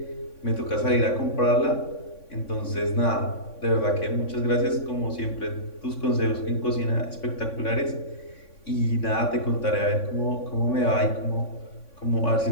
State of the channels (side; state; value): right; late; 3.6 ms